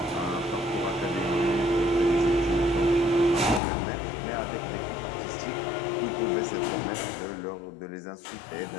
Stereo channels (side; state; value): right; drops out; at 3.6 s